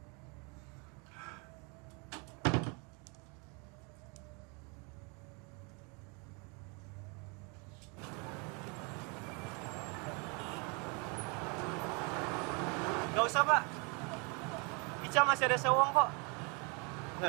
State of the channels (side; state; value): left; quieter; 32.3 dB